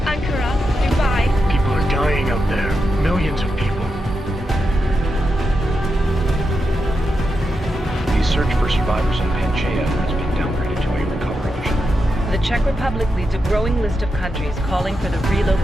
Ankara, Dubai. People are dying out there. Millions of people. The search for survivors in Pangaea has been downgraded to a recovery mission. The Czech Republic leads a growing list of countries calling for the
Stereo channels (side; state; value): both; normal; correlation 0.87